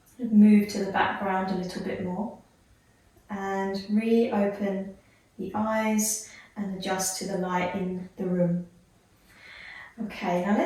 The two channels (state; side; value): identical; both; correlation 1.00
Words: move to the background a little bit more and reopen the eyes and adjust to the light in the room. Okay, now